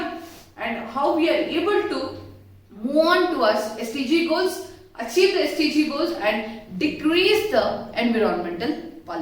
and how we are able to move on towards SDG goals, achieve the SDG goals and decrease the environmental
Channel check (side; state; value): both; identical; correlation 1.00